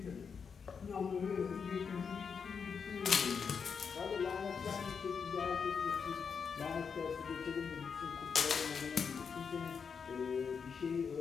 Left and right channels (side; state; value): right; quieter; 6.2 dB